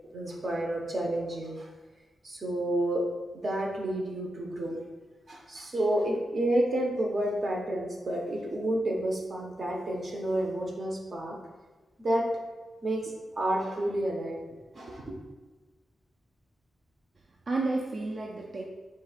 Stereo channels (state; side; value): normal; both; correlation 0.87